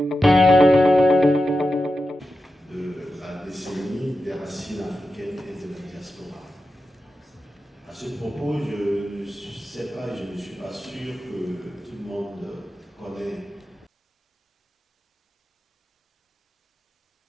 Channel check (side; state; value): both; normal; correlation 0.90